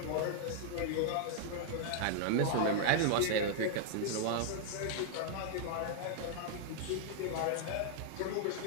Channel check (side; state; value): both; different; correlation -0.01